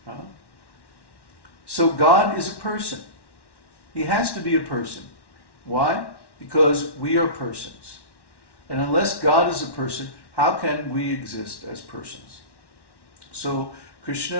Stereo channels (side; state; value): right; late; 1.1 ms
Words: So God is a person. He has to be a person. Why? Because we are persons. And unless God is a person, how can we exist as persons? So